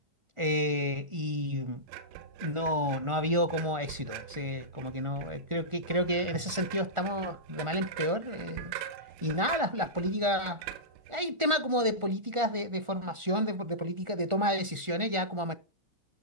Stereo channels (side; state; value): left; late; 1.4 ms